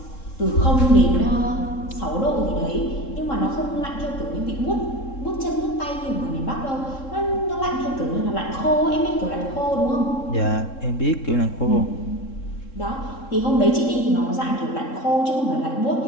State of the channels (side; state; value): right; late; 3.7 ms